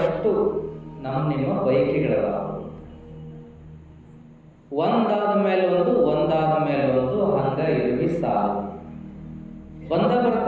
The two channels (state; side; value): identical; both; correlation 1.00